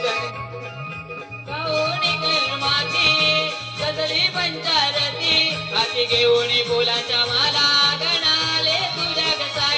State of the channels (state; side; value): identical; both; correlation 1.00